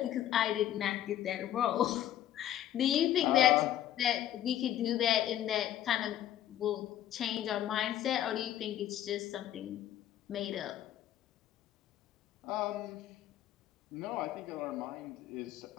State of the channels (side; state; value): right; quieter; 11.9 dB